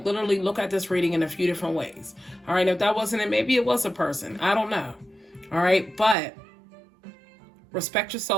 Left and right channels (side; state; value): left; drops out; at 6.2 s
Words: look at this reading in a few different ways. All right. If that wasn't it, maybe it was a person. I don't know. All right. But respect